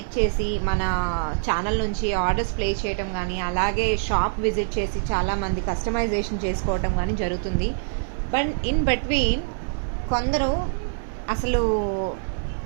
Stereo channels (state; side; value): silent; left; 57 dB below the other